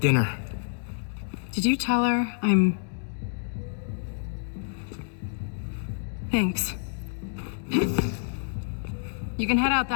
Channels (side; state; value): right; silent; digital silence